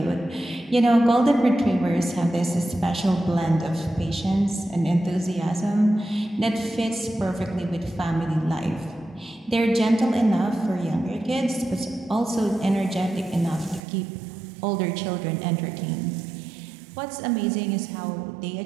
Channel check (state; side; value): drops out; left; at 13.8 s